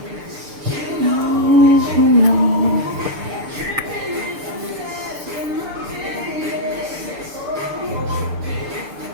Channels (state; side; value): late; left; 6.7 ms